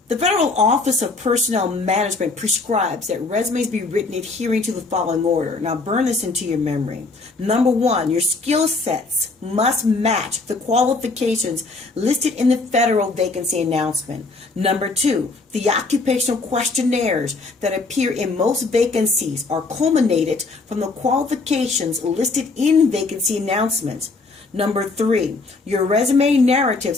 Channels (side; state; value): right; quieter; 3.6 dB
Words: The Federal Office of Personnel Management prescribes that resumes be written adhering to the following order. Now burn this into your memory. Number one, your skill sets must match the qualifications listed in the federal vacancy announcement. Number two, the occupational questionnaires that appear in most vacancies are culminated from the qualifications listed in vacancy announcements. Number three, your resume